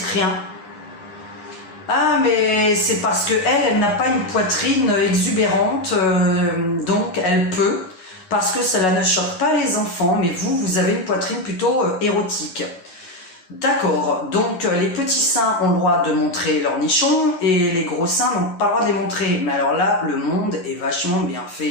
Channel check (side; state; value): right; late; 9.7 ms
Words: rien? Ah, mais c'est parce que elle n'a pas une poitrine exubérante, donc elle peut, parce que cela ne choque pas les enfants, mais vous avez une poitrine plutôt érotique. D'accord, donc les petits seins ont le droit de montrer leur nichon, et les gros seins n'ont pas le droit de les montrer. Mais alors là, le monde est vachement bien